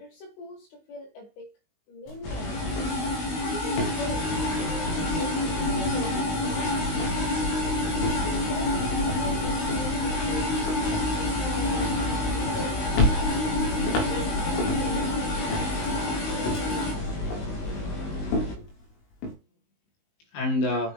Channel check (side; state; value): right; late; 19 ms